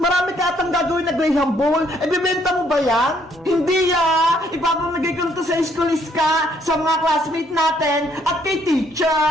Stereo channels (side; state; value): both; normal; correlation 0.67